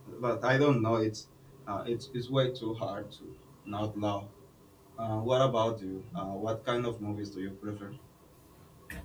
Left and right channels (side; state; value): both; identical; correlation 1.00